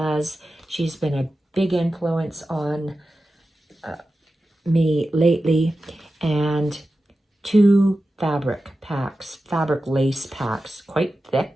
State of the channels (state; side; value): normal; both; correlation 0.93